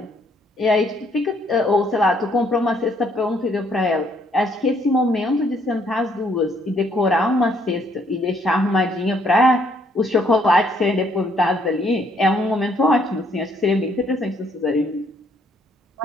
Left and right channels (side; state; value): both; normal; correlation 0.68